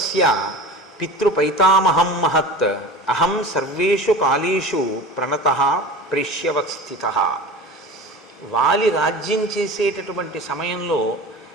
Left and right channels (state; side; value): normal; both; correlation 0.35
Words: పితృపైతామహం మహత్ అహం సర్వేషు కాలేషు ప్రణతః ప్రేష్యవత్స్థిత. వాలి రాజ్యం చేసేటటువంటి సమయంలో